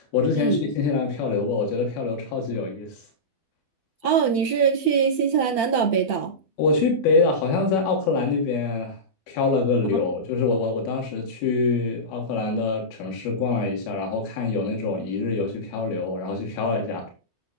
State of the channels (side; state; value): right; late; 12 ms